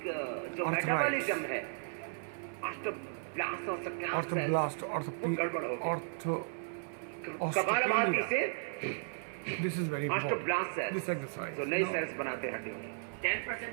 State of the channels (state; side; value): silent; left; digital silence